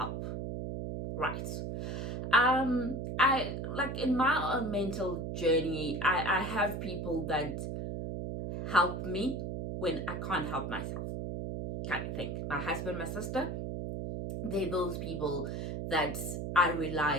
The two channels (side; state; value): right; noise; hum, 4 dB below the sound